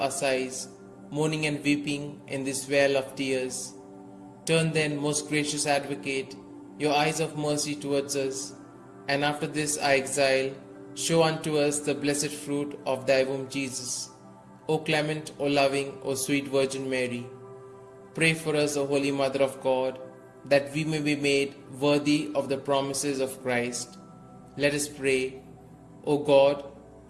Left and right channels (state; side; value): identical; both; correlation 1.00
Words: sighs, mourning and weeping in this vale of tears. Turn then, most gracious Advocate, your eyes of mercy towards us, and after this our exile, show unto us the blessed fruit of thy womb, Jesus. O clement, O loving, O sweet Virgin Mary, pray for us, O Holy Mother of God, that we may be made worthy of the promises of Christ. Let us pray. O God,